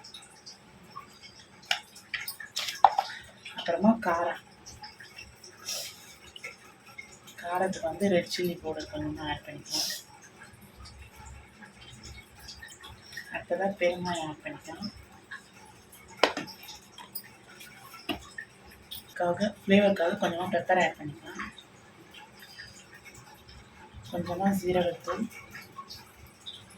அப்புறமா காரத்துக்கு வந்து ரெட் சில்லி பவுடர் கொஞ்சமாக ஆட் பண்ணிக்கலாம். அடுத்ததாக பெருங்காயம் ஆட் பண்ணிக்கலாம். ஃப்ளேவருக்காக கொஞ்சமாக பெப்பர் ஆட் பண்ணிக்கலாம். கொஞ்சமாக ஜீரகத்தூள்,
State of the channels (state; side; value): identical; both; correlation 1.00